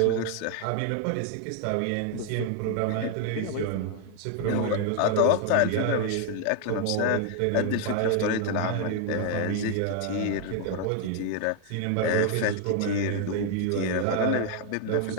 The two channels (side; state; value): both; different; correlation 0.00